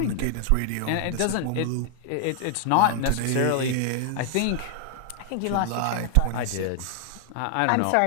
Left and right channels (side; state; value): both; different; correlation 0.00